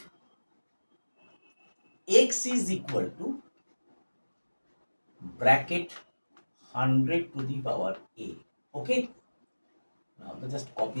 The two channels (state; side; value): inverted; both; correlation -1.00